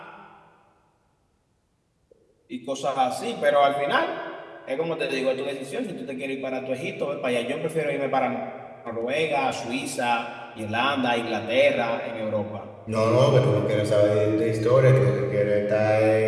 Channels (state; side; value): identical; both; correlation 1.00